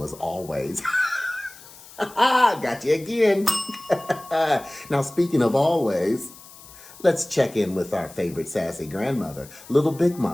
Always. Got you again. Now, speaking of always, let's check in with our favorite sassy grandmother, Little Big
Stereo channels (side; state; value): left; noise; hiss, 20 dB below the sound